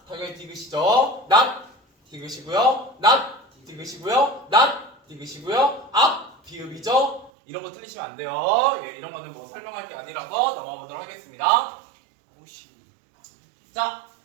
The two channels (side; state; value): left; drops out; at 7.3 s